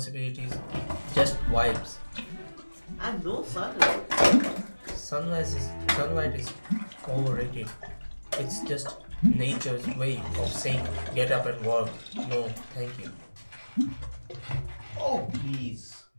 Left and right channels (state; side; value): inverted; both; correlation -1.00